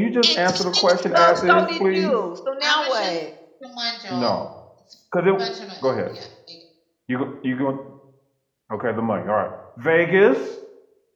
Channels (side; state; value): both; identical; correlation 1.00